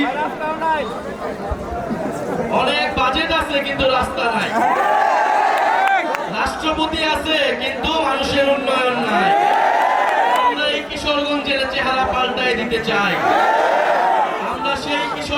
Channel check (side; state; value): both; identical; correlation 1.00